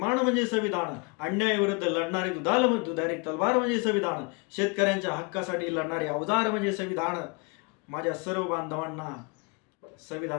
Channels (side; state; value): right; quieter; 31.5 dB